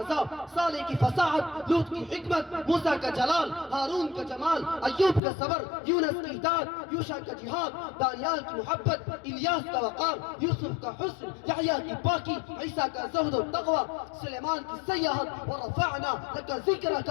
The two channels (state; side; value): drops out; right; at 5.2 s